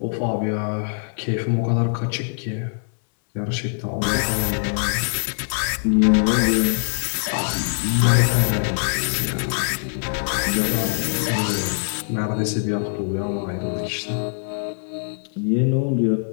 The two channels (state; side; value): silent; right; digital silence